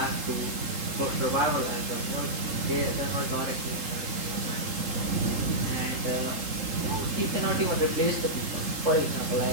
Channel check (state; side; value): late; left; 3.8 ms